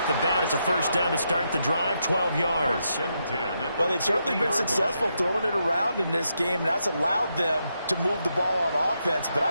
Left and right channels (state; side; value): inverted; both; correlation -0.82